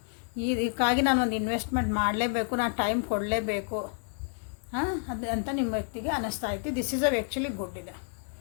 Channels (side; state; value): right; silent; 58 dB below the other